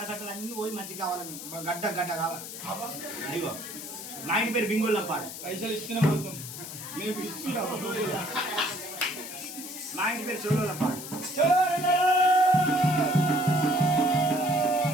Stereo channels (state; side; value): noise; left; hiss, 10 dB below the sound